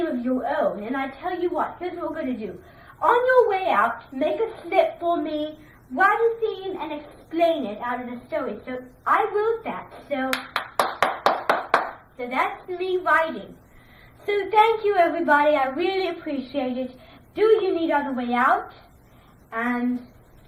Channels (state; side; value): identical; both; correlation 1.00